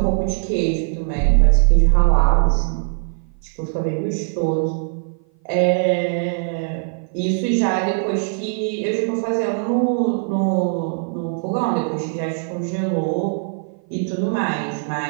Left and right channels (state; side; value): silent; left; 56 dB below the other